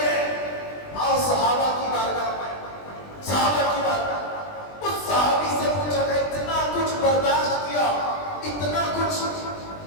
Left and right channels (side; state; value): right; late; 20 ms